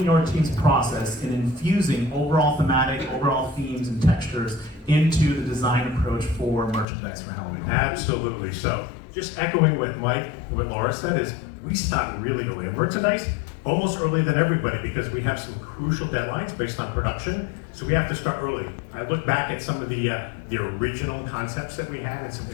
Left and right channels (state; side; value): drops out; right; at 6.9 s